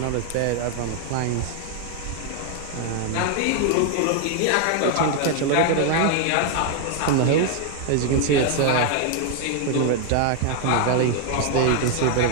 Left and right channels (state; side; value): different; both; correlation 0.00